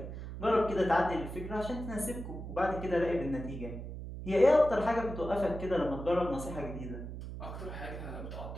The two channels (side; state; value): right; noise; hum, 8 dB below the sound